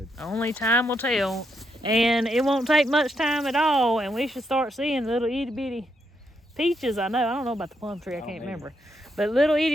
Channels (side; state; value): both; normal; correlation 0.79